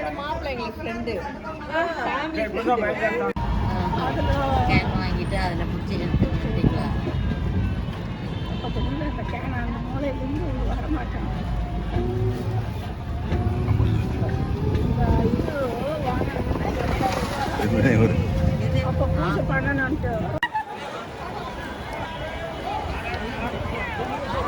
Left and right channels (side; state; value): both; identical; correlation 1.00